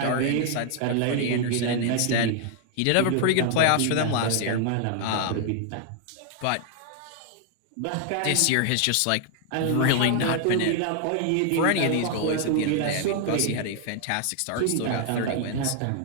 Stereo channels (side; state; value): both; different; correlation 0.00